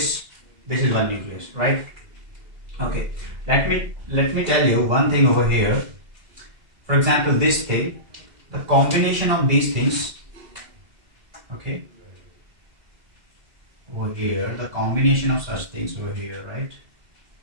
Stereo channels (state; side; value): late; left; 2.0 ms